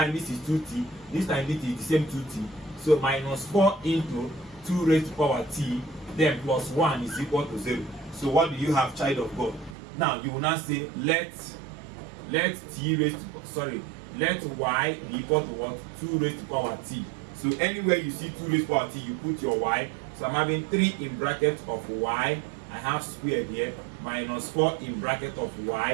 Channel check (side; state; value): left; drops out; at 9.8 s